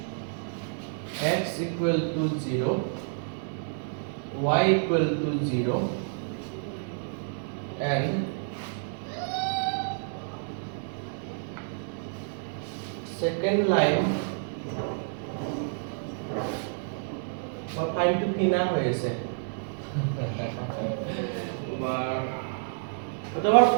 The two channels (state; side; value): silent; left; 58 dB below the other